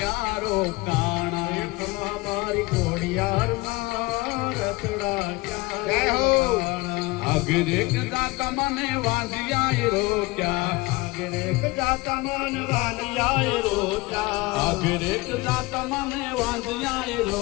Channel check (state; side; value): quieter; right; 22.6 dB